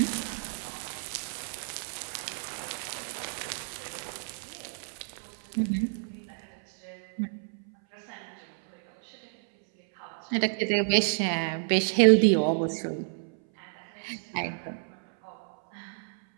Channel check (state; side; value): silent; left; 58 dB below the other